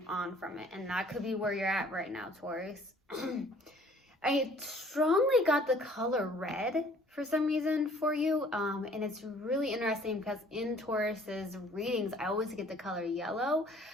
on from it. And that could be where you're at right now, Taurus. I strongly got the color red for some reason for you. And it's really interesting because in Taurus's readings, I always get the color yellow.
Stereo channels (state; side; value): normal; both; correlation 0.55